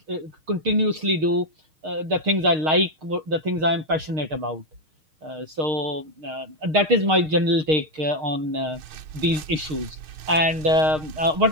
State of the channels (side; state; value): left; late; 6.5 ms